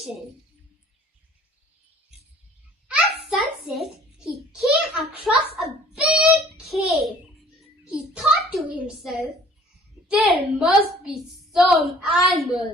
At sunset, he came across a big cave. He thought to himself, there must be some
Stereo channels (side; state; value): both; normal; correlation 0.52